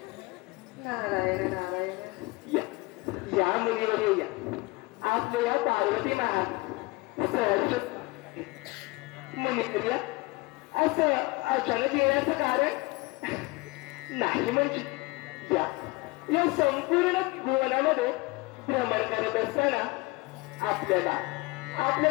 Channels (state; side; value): quieter; right; 23.6 dB